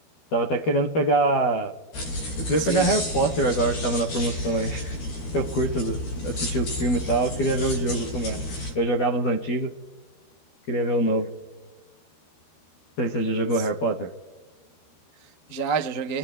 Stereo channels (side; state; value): right; late; 13 ms